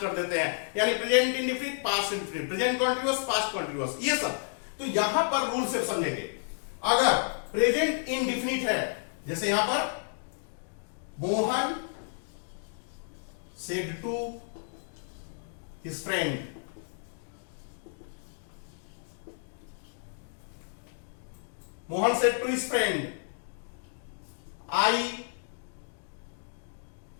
देते हैं, यानी present indefinite past indefinite, present continuous past continuous, ये सब। तो यहां पर रूल से समझेंगे। अगर प्रेजेंट इंडेफिनिट है, जैसे यहां पर Mohan said to his friend, Mohan said to his friend, I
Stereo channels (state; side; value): silent; right; digital silence